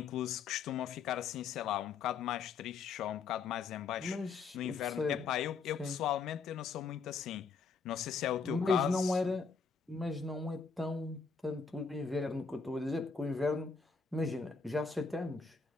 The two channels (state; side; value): quieter; right; 5.1 dB